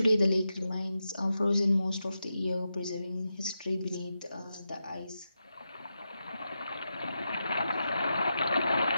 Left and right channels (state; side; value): inverted; both; correlation -0.88